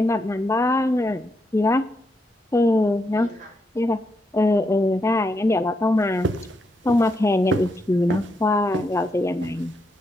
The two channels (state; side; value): normal; both; correlation 0.81